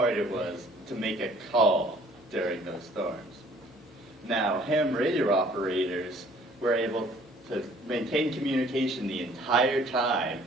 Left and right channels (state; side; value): normal; both; correlation 0.56